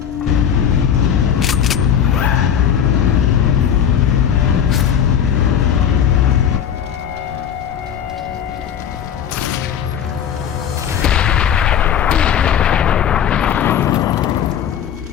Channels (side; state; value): right; quieter; 8.7 dB